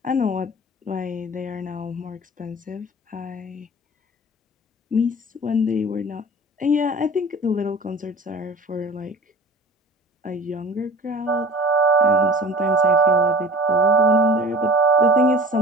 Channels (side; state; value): both; normal; correlation 0.42